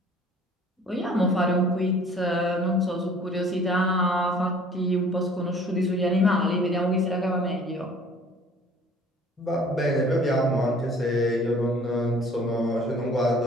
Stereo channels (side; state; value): both; normal; correlation 0.52